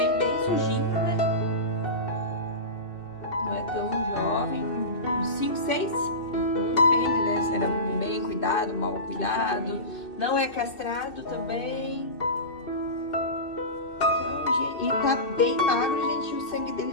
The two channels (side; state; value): right; late; 2.7 ms